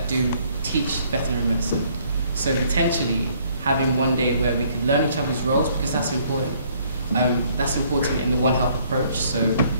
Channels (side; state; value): both; inverted; correlation -0.64